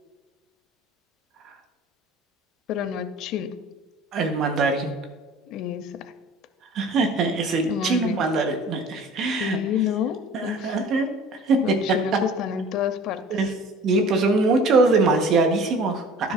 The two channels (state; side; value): normal; both; correlation 0.46